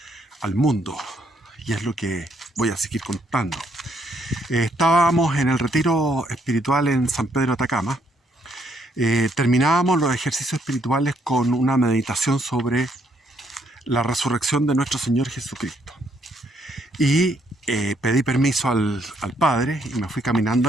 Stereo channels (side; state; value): both; normal; correlation 0.71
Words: al mundo y es lo que voy a seguir contando. Estábamos en el retiro espiritual en San Pedro de Atacama. Terminábamos los ejercicios espirituales con una meditación sobre la resurrección de nuestro Señor Jesucristo. Y pedí permiso al Padre y me fui